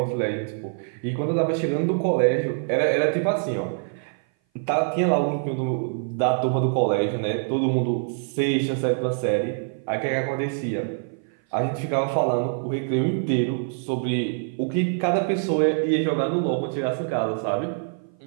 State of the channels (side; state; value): left; silent; 57 dB below the other